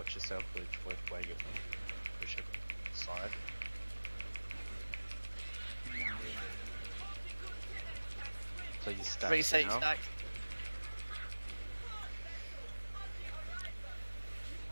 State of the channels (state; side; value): inverted; both; correlation -1.00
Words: yourself with where you push it side. Please stack. 3 seat now. stack.